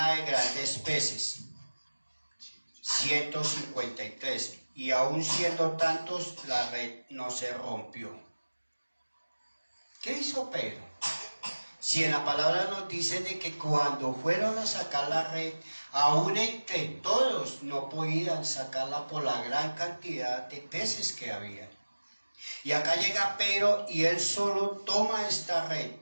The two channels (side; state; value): both; inverted; correlation -1.00